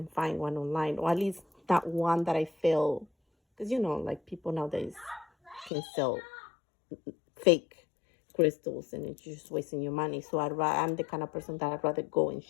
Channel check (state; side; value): drops out; right; at 5.7 s